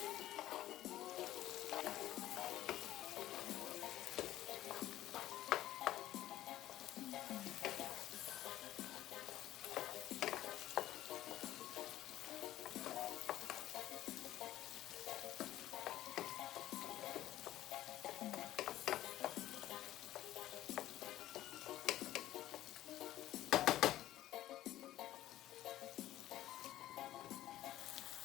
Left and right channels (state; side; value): quieter; right; 14.1 dB